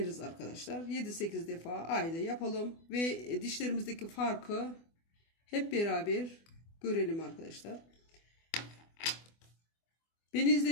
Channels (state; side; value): late; right; 24 ms